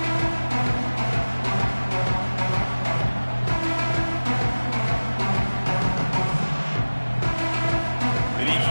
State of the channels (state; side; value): inverted; both; correlation -1.00